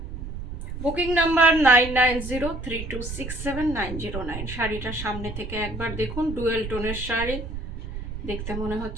বুকিং নাম্বার 9903267909। শাড়িটা সামনে থেকে একবার দেখুন। ডুয়েল টোনের শাড়ি, দেখতে মনে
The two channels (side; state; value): right; noise; rumble, 7 dB below the sound